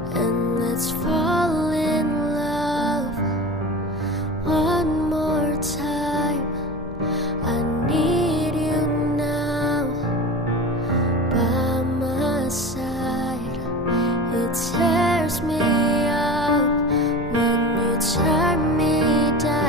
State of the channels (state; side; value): noise; left; hum, 19 dB below the sound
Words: and let's fall in love one more time. I need you now by my side. It tears me up when you turn me